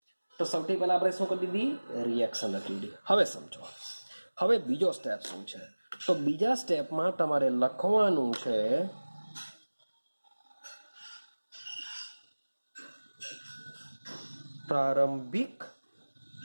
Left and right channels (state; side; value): inverted; both; correlation -1.00